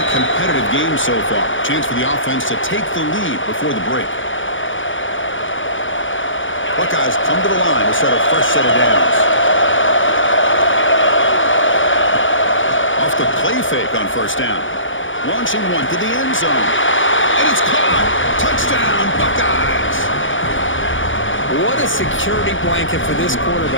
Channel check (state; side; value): late; right; 0.56 ms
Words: competitive game so far. Chance for the offense to take the lead before the break. Buckeyes come to the line to start a fresh set of downs. Off the play fake on first down. Launching one to the end zone. And it's caught. Touchdown, Buckeyes. What a security blanket for this